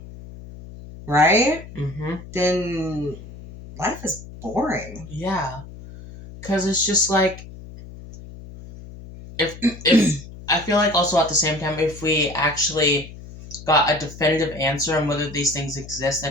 right? Mm-hmm. Then life is boring. Yeah. Because it's just like, if I feel like also at the same time, if we actually got a definitive answer on whether these things exist, I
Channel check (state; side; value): noise; left; hum, 15 dB below the sound